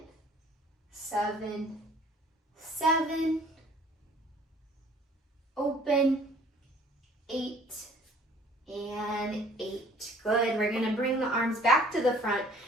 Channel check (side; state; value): both; normal; correlation 0.54